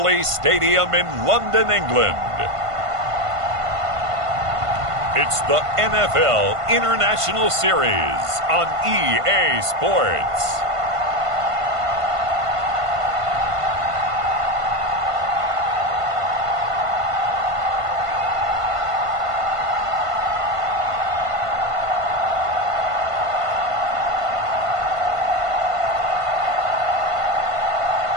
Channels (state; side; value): late; left; 1.5 ms